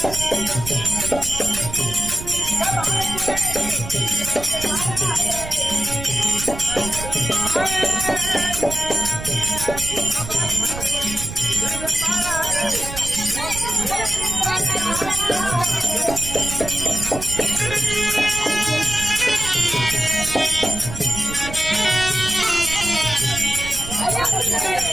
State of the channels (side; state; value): right; noise; rumble, 9 dB below the sound